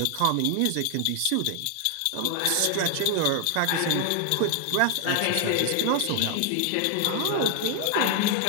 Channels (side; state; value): both; different; correlation 0.00